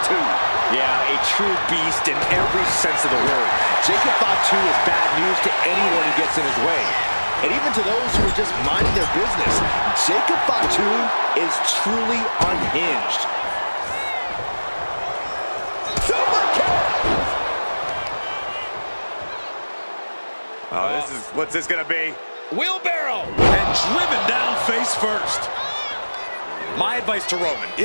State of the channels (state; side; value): inverted; both; correlation -1.00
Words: Yeah, a true beast in every sense of the word. Jacob Fatu is bad news to anyone who gets in his way. And even to those who are just minding their business, Jacob Fatu is truly unhinged. Super kick! Oh, what's this gonna be? Wheelbarrow! And driven down face first. My advice to Roman,